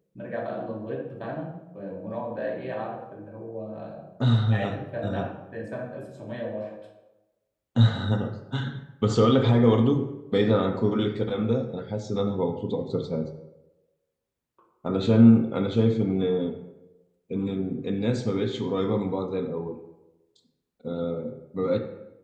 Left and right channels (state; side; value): identical; both; correlation 1.00